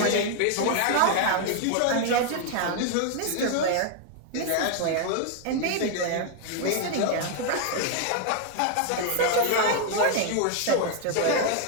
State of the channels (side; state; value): both; different; correlation 0.00